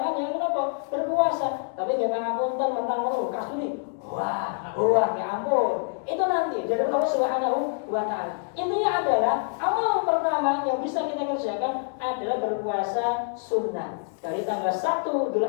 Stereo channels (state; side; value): silent; right; 61 dB below the other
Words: yang berpuasa. Tapi jangan apunten mentang kasturi. Wah, ya ampun. Itu nanti dari Allah Subhanahu wa taala. Intinya adalah amal pertama yang bisa kita kerjakan adalah berpuasa sunnah dari tanggal 1